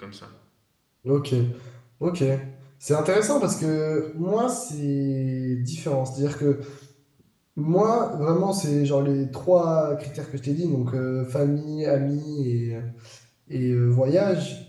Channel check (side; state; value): both; identical; correlation 1.00